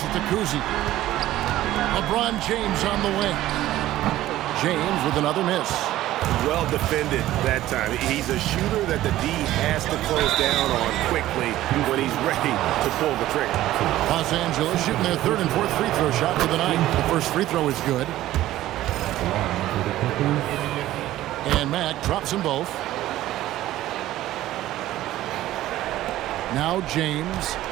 to Kuzi. LeBron James on the wing. James with another miss. Well defended that time. He's a shooter that the D has to close down on quickly when he's ready to pull the trigger. Los Angeles shooting their third and fourth free throw shot for the night. The first free throw is good. And Mack drops them both. Now James.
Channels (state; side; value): quieter; left; 14.7 dB